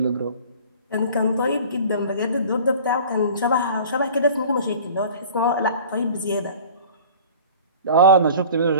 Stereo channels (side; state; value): both; inverted; correlation -0.44